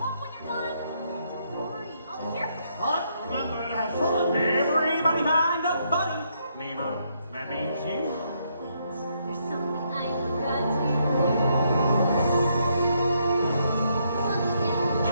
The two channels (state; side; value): inverted; both; correlation -0.75